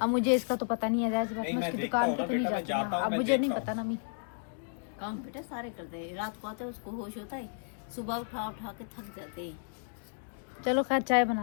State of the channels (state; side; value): silent; right; digital silence